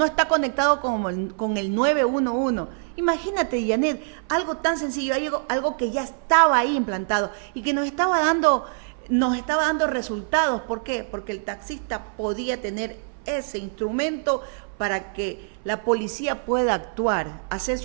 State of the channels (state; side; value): silent; left; 58 dB below the other